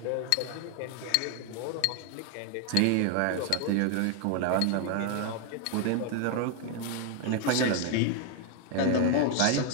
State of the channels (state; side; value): different; both; correlation 0.00